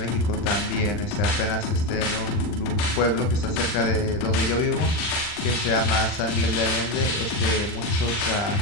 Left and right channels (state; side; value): late; right; 39 ms